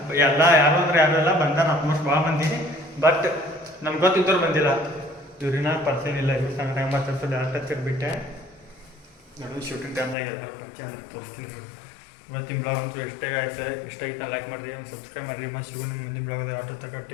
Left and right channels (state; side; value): drops out; right; at 10.2 s